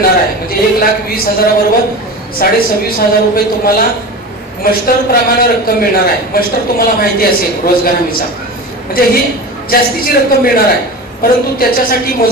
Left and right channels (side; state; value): both; normal; correlation 0.30